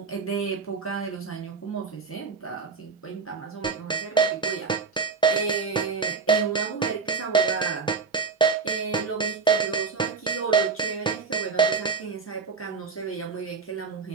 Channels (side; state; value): left; quieter; 5.1 dB